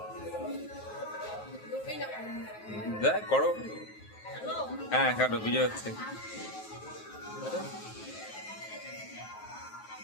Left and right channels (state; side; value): late; right; 9.4 ms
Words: দেখ করো। হ্যাঁ কাটো, বিজয় হচ্ছে।